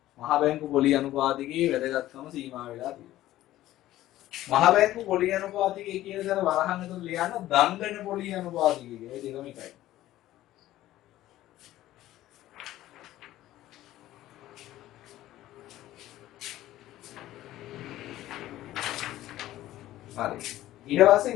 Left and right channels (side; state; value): right; quieter; 14.7 dB